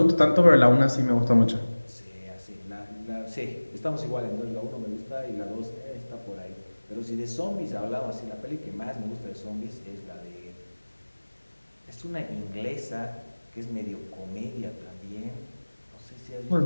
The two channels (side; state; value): both; inverted; correlation -1.00